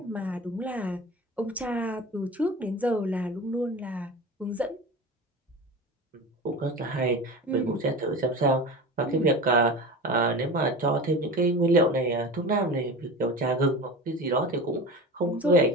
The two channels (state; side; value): normal; both; correlation 0.31